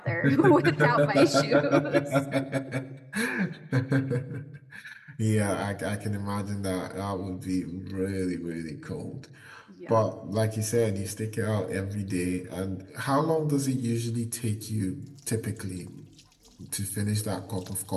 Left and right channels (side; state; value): both; identical; correlation 1.00